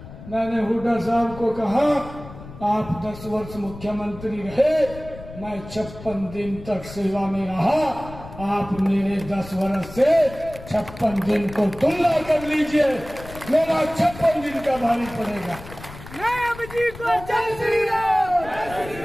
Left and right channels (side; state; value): left; noise; rumble, 15 dB below the sound